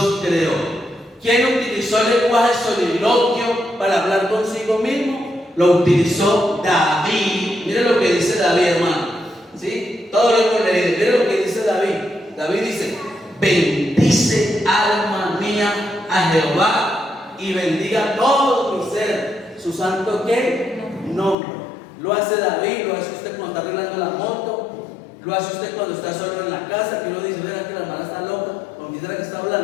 creó. ¿Quién utilizó el lenguaje soliloquio para hablar consigo mismo? Lo utilizó David. Mire lo que dice David, hermano. ¿Sí? Todo lo hemos leído. Mire lo que dice David. David dice: bendice alma mía a Jehová y bendiga todo mi ser su santo ¿qué? Nombre. Lo hace David, lo hace usted cuando está arreglando la moto, lo hace usted cuando está solo en la casa, que uno dice, verá que la hermana está loca, con quién será que está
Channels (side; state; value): right; drops out; at 21.4 s